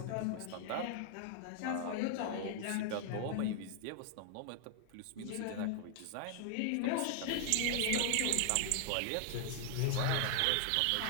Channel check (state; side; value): different; both; correlation 0.00